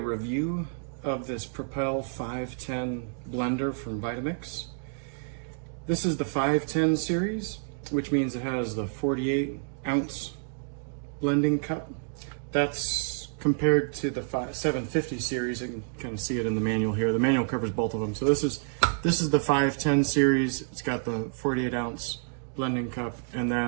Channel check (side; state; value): left; silent; digital silence